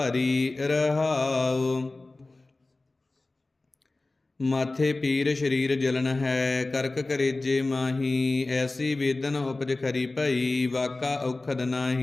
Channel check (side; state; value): right; quieter; 3.1 dB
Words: ਰਹਾਉ। ਮਾਥੇ ਪੀਰ ਸਰੀਰ ਜਲਨ ਹੈ, ਕਰਕ ਕਰੇਜੇ ਮਾਹੀ। ਐਸੀ ਵੇਦਨ ਉਪਜ ਖਰੀ ਭਈ, ਵਾਕਾ ਔਖਦ